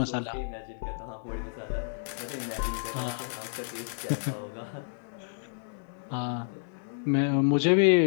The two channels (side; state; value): right; silent; digital silence